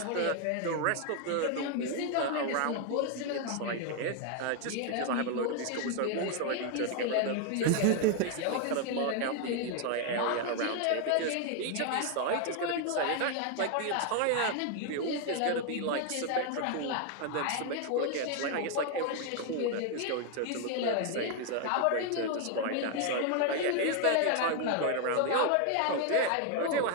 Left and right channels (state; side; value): different; both; correlation 0.01